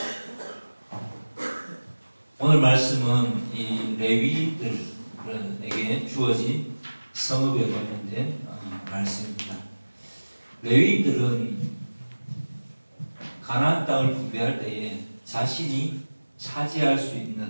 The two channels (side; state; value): both; inverted; correlation -1.00